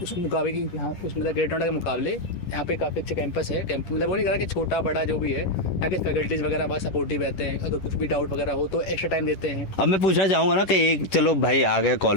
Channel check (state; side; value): late; right; 10 ms